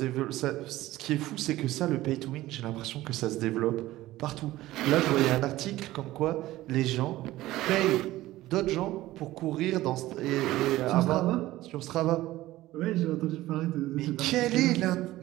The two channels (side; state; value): left; quieter; 16.4 dB